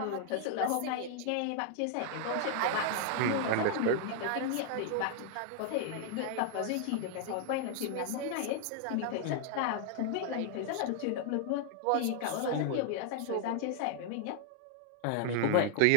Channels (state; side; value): different; both; correlation 0.00